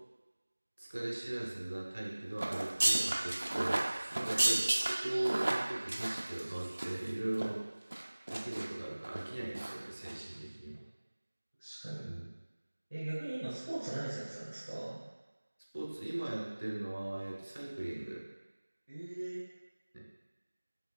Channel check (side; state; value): both; inverted; correlation -1.00